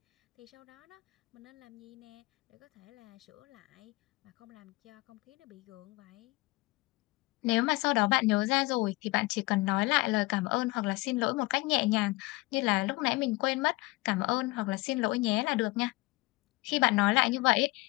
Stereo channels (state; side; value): quieter; right; 22.5 dB